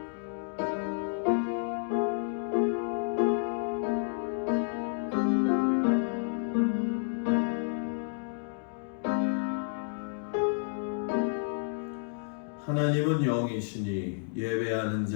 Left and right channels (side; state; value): right; silent; digital silence